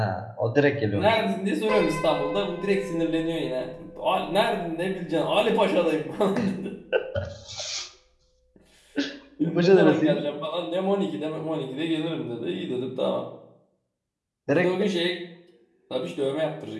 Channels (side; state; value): both; identical; correlation 1.00